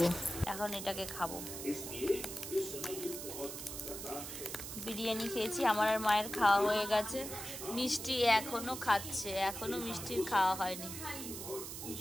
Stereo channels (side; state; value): right; noise; hiss, 8 dB below the sound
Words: এখন এটাকে খাবো। বিরিয়ানি খেয়েছি, আমার আর মায়ের খাওয়া হয়ে গেছে। মিষ্টি এখনো খাচ্ছে, এখনো মিষ্টির খাওয়া হয়নি,